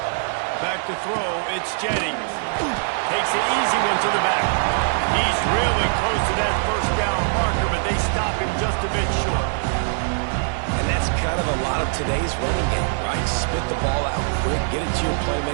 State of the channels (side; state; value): left; silent; digital silence